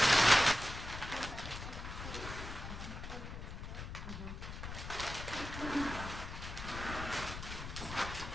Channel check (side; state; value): left; noise; rumble, 8 dB below the sound